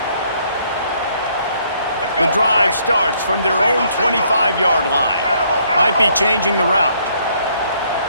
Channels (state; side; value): inverted; both; correlation -0.67